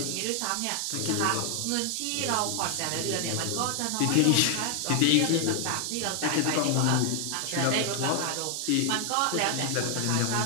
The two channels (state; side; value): different; both; correlation 0.00